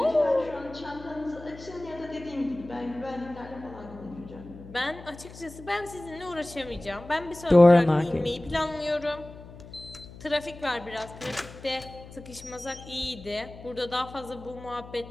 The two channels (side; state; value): left; noise; hum, 16 dB below the sound